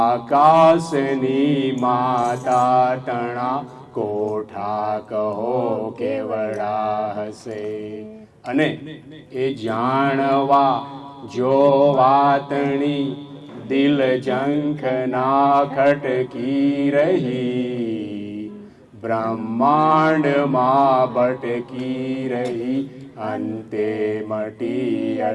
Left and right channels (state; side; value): identical; both; correlation 1.00